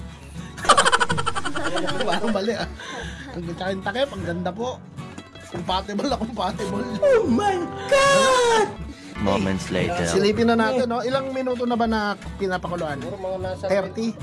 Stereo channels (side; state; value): both; identical; correlation 1.00